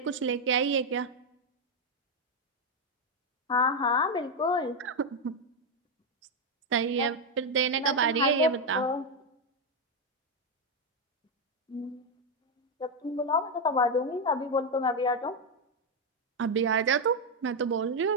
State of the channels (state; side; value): normal; both; correlation 0.04